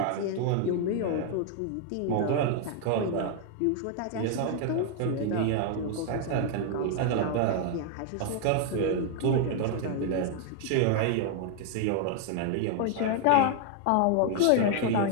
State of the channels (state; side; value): different; both; correlation 0.00